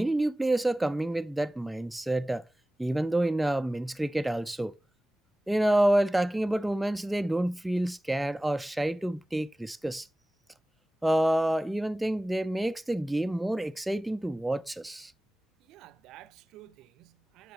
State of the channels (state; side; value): normal; both; correlation 0.98